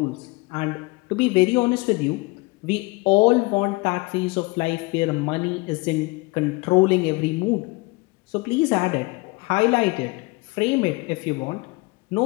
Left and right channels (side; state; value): right; quieter; 25.2 dB